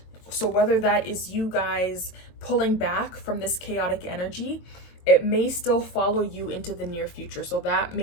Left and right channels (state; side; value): late; right; 22 ms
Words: So whether that is you guys pulling back from this chaotic energy, it may still follow you into the near future. So that